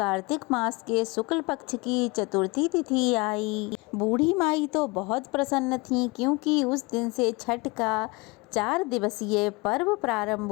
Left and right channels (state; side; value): quieter; right; 25.9 dB